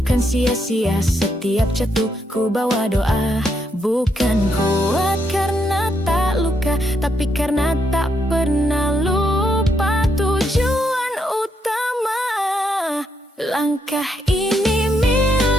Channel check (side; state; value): both; normal; correlation 0.77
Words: sia-sia, setiap jatuh ku bawa doa. Bukan kuat karena tak luka, tapi karena tak pernah lupa tujuan utama. Langkah ini